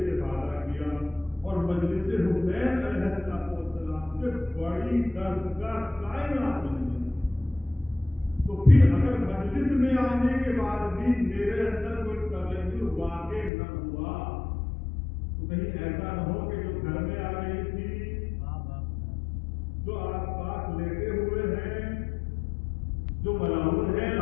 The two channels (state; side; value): drops out; right; at 13.5 s